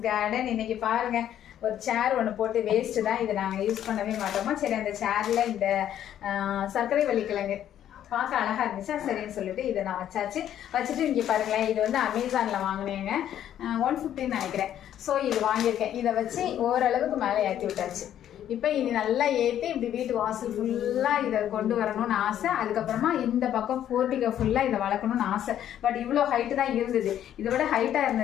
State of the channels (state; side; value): quieter; right; 10.8 dB